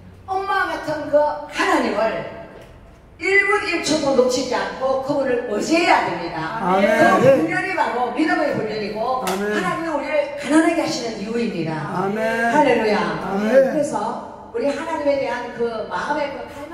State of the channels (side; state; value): both; identical; correlation 1.00